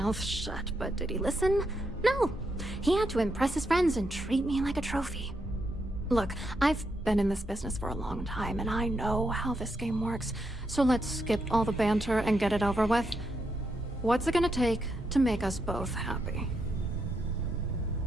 shut, but did he listen? No, he had to impress his friends and treat me like a trophy. Look, I've been in this business for a long time, and I know how this game works, so let's skip all the banter and get it over with. What's it gonna take to make us both happy?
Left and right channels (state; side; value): normal; both; correlation 0.81